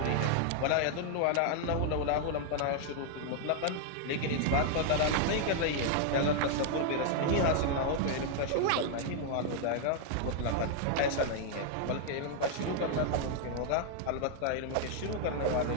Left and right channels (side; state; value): both; different; correlation 0.00